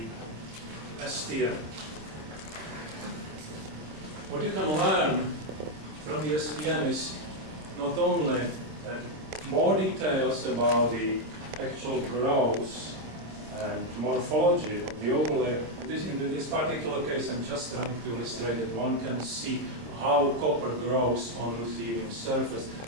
STM. What you can learn from the STM is not only more details about the actual growth and morphology of the overlay. In this particular case, I'm just trying to illustrate that one can see how copper grows on ruthenium surface,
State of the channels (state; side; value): late; left; 26 ms